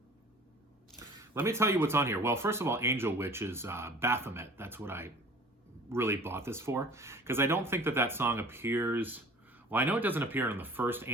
Let me tell you what's on here. Well, first of all, Angel Witch is Baphomet. That's what I really bought this for, because I don't think that that song appears. Well, I know it doesn't appear on the first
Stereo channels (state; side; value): normal; both; correlation 0.45